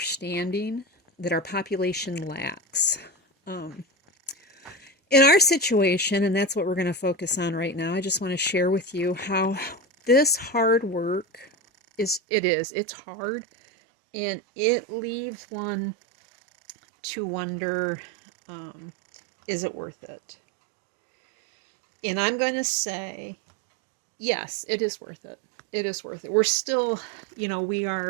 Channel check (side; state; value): left; drops out; at 12.2 s